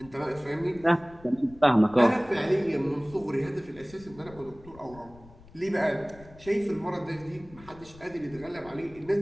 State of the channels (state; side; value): noise; left; rumble, 21 dB below the sound